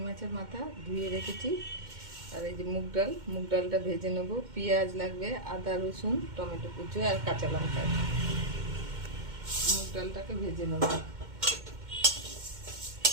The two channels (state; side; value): late; left; 2.1 ms